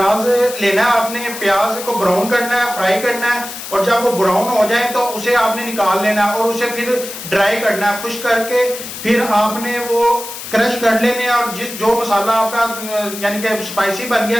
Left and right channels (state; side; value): noise; left; hiss, 10 dB below the sound